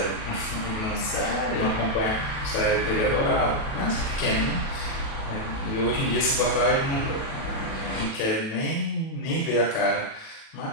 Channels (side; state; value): right; late; 37 ms